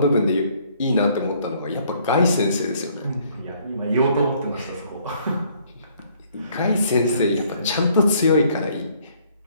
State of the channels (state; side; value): inverted; both; correlation -0.63